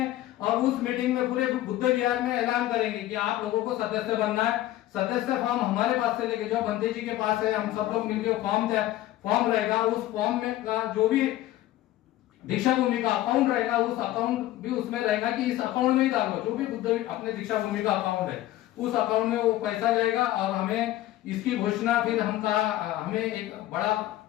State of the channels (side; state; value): right; quieter; 14.9 dB